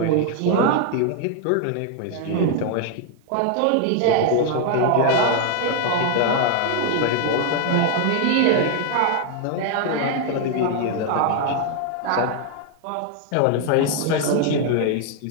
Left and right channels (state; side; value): different; both; correlation 0.00